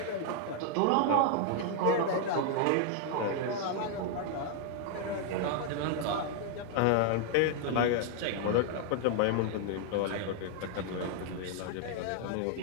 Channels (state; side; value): different; both; correlation 0.00